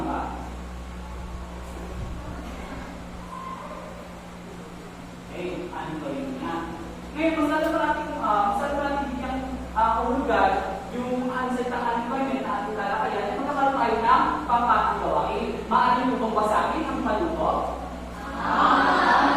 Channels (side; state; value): both; identical; correlation 1.00